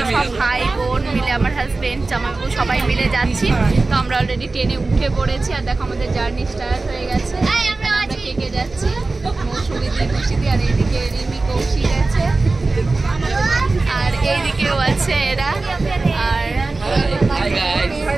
সব ভাই বোন মিলে, আমার হাজবেন্ড জামাইবাবু সবাই মিলে যাচ্ছি। তো আমরা অলরেডি ট্রেনে উঠে পড়েছি আর দেখো আমাদের জার্নি স্টার্ট হয়ে গেছে। আমরা কেকে যাচ্ছি মৌসুমি খুশিদি, আর এইদিকে রিমি কৌশিক আছে আর এইদিকেও আছে এরা। আর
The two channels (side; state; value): left; quieter; 3.5 dB